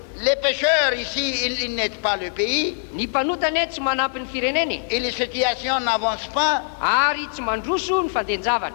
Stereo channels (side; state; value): right; silent; 64 dB below the other